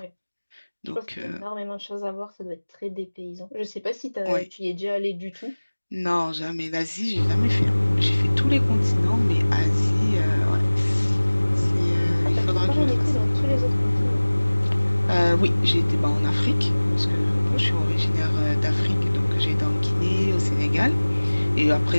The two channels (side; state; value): both; inverted; correlation -1.00